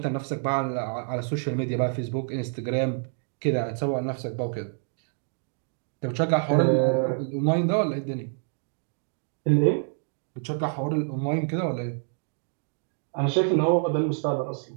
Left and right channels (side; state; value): left; silent; digital silence